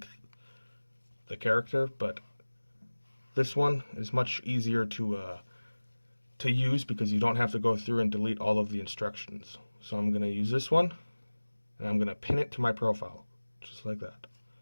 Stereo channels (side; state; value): both; inverted; correlation -1.00